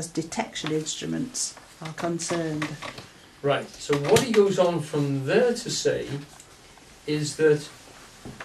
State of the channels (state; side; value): identical; both; correlation 1.00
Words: detection instruments are concerned. Right, so what he goes on from there to say is that